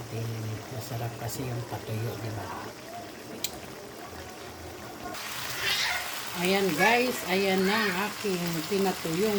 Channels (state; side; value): identical; both; correlation 1.00